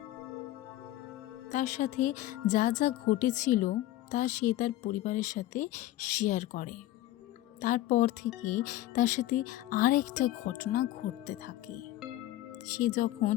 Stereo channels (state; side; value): quieter; right; 15.0 dB